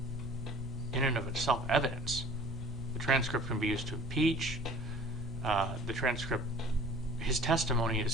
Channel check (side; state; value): both; normal; correlation 0.48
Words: in and of itself evidence. The transcript can be used to impeach. The transcript, his testimony